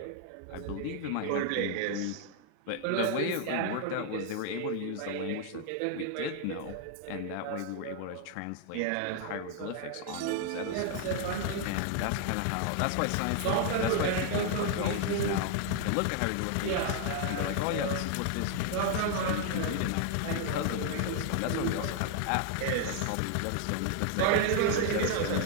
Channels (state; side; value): different; both; correlation 0.00